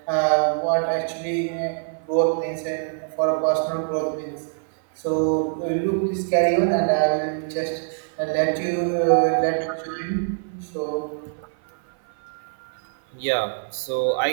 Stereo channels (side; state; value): left; silent; 57 dB below the other